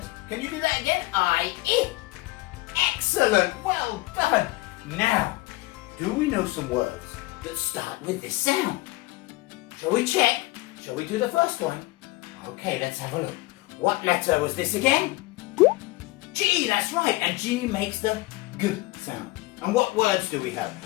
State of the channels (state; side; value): quieter; right; 20.7 dB